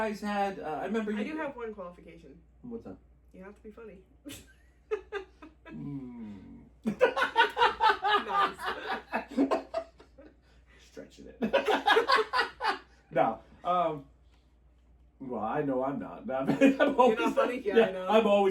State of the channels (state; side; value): identical; both; correlation 1.00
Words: had, I remember I do have one qualification. What's that? You have to be funny. Nice. Stretching it. No. Well, I know I'm not. You're not funny? Yeah, I know. I'm